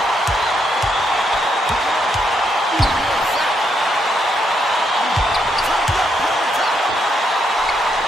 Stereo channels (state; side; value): normal; both; correlation 0.77